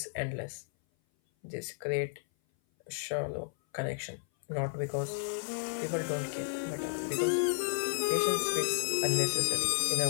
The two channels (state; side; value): silent; right; 56 dB below the other